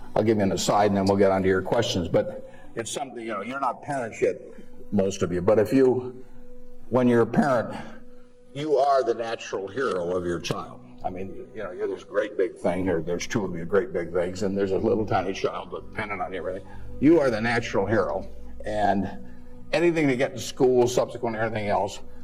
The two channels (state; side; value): identical; both; correlation 1.00